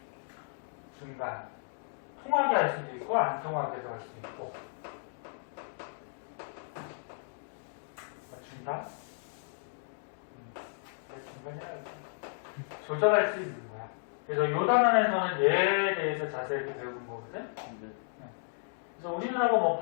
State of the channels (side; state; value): right; silent; digital silence